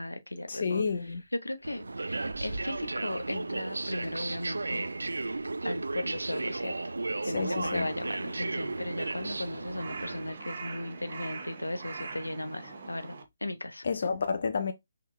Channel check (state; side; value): inverted; both; correlation -0.91